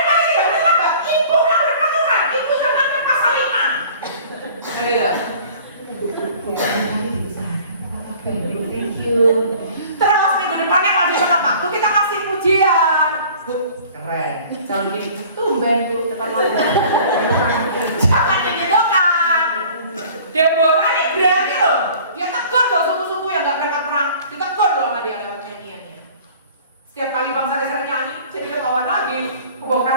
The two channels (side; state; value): both; inverted; correlation -0.48